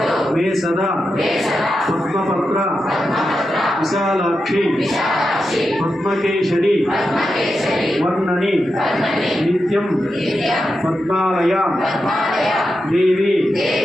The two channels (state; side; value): normal; both; correlation 0.88